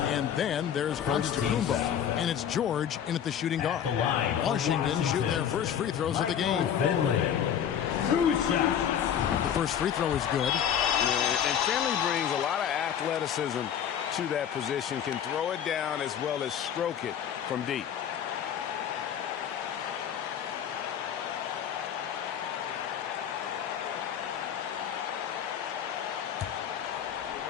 then there's Antetokounmpo. And it's George in at the shooting guard. Washington shoot their first free throws of the game. The first free throw is good. And Finley brings a lot of athleticism to that position. Can throw it down as well as stroke it from deep.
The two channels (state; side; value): quieter; right; 9.0 dB